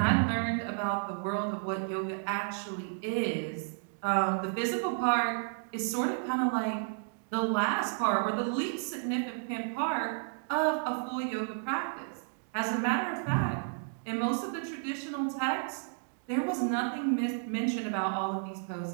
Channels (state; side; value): silent; left; digital silence